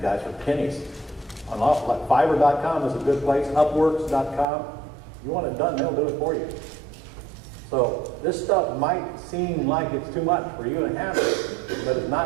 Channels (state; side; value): drops out; left; at 4.5 s